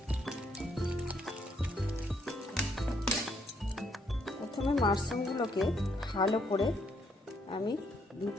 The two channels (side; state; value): both; normal; correlation 0.72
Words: প্রথমে মাশরুমগুলোকে ভালো করে আমি 2